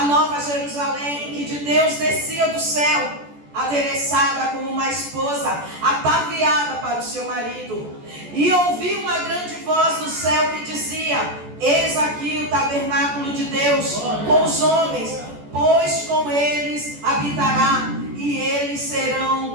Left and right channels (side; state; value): left; late; 14 ms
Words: nova Jerusalém, que de Deus descia do céu, adereçada como uma esposa, ataviada para o seu marido. E ouvi uma grande voz do céu que dizia: eis aqui o tabernáculo de Deus com os homens, pois com eles habitará, e eles